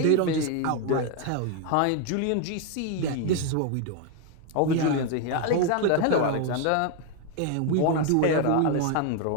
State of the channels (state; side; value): different; both; correlation 0.01